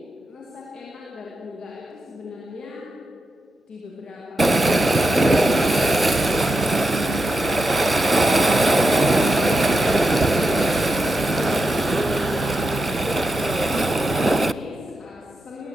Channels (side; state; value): both; normal; correlation 0.87